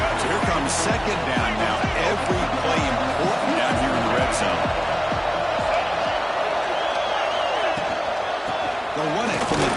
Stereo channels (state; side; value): identical; both; correlation 1.00